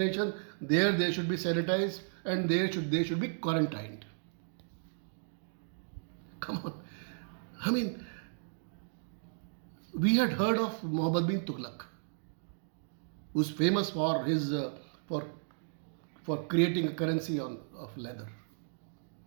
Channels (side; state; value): left; silent; digital silence